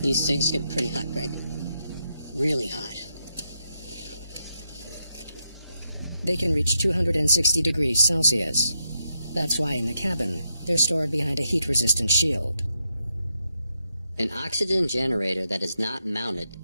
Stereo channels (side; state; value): both; inverted; correlation -0.81